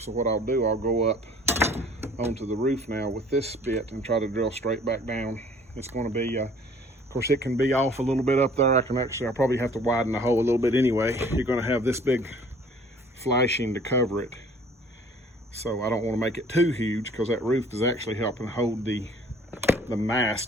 So what I'll do, I'll go up onto the roof now with this bit and try to drill straight back down. It's going to be course, it can be off a little bit up there. I'll probably have to widen the hole a little bit anyway. You're gonna have this big flashing to cover it. So I don't want to make it too huge, because that roof is actually helping hold the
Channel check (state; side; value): normal; both; correlation 0.53